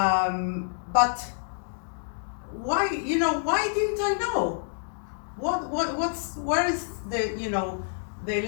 why didn't I know? Where is the, the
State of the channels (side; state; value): right; silent; digital silence